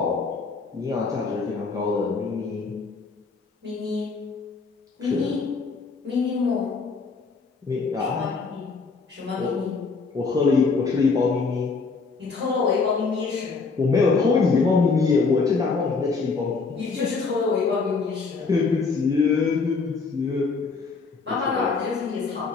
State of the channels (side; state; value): right; quieter; 4.5 dB